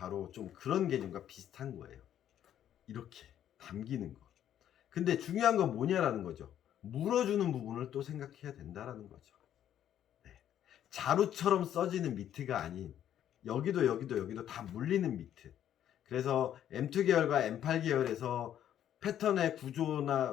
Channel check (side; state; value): right; quieter; 10.6 dB